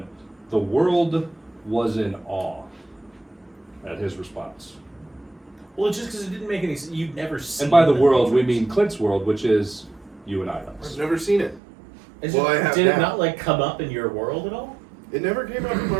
the world was in awe at his response. Well, it's just because it didn't make any sense. You'd never seen And by the world, we Matrix. mean Clint's world, which is you and I. I've never seen it. Well, I have did now. it not like come up in your world at all? It never came out in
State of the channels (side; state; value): left; drops out; at 11.6 s